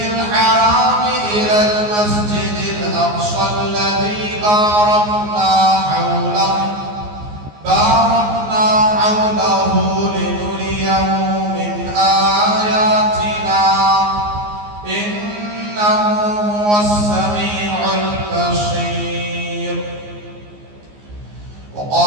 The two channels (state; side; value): late; left; 14 ms